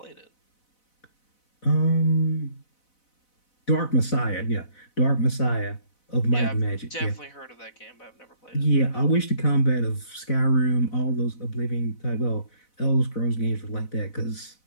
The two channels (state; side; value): late; right; 4.0 ms